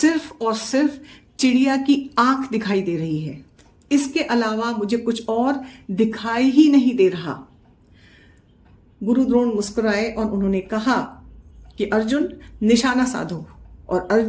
और सिर्फ चिड़िया की आंख दिखाई दे रही है, इसके अलावा मुझे कुछ और दिखाई ही नहीं दे रहा। गुरु द्रोण मुस्कुराए और उन्होंने कहा कि अर्जुन, निशाना साधो। और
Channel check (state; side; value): identical; both; correlation 1.00